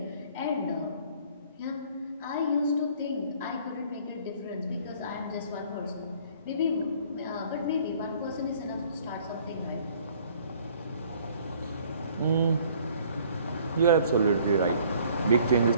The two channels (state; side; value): inverted; both; correlation -0.56